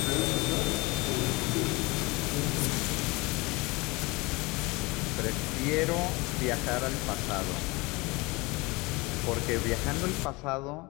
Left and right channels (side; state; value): right; quieter; 24.7 dB